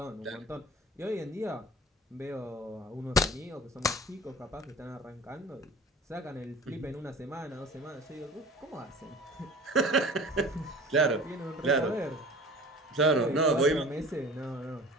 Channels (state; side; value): normal; both; correlation 0.41